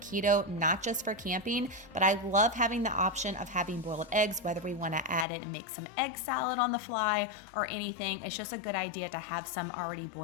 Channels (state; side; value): drops out; right; at 5.2 s